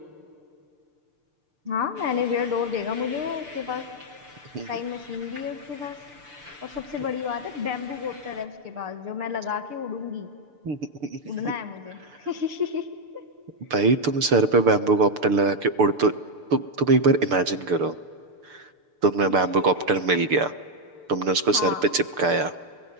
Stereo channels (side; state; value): left; late; 6.8 ms